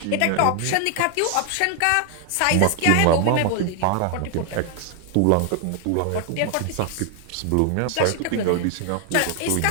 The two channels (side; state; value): both; different; correlation 0.00